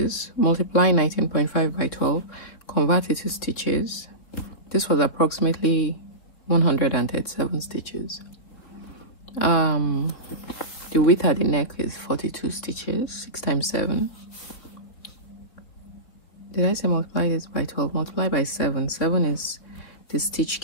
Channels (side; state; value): right; late; 4.2 ms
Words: Multiply 19.5 by 12, convert it to stitches. This was approximately 137 stitches. The width at the neck is 42 stitches. 6 times 7. Did I say multiply this by 12? Multiply by 7. 7 is the stitch